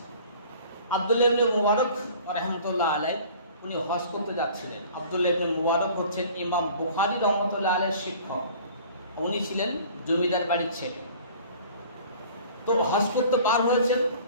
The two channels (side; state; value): both; inverted; correlation -0.48